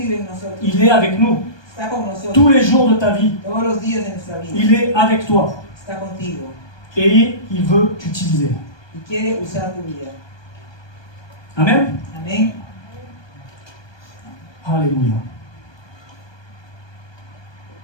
en nosotros. Il est avec nous. Está con nosotros. Tous les jours de ta vie, Todos los días de nuestra vida. il est avec toi. Está contigo. Et il veut t'utiliser. Y quiere usar tu vida. Amen. Amén. Alléluia.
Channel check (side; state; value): right; late; 1.2 ms